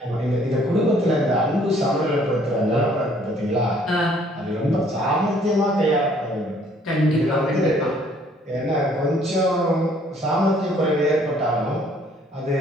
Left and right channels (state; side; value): normal; both; correlation 0.61